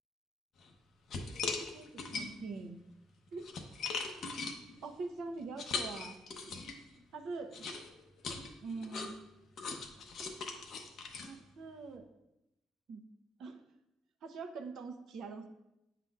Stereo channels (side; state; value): both; normal; correlation 0.65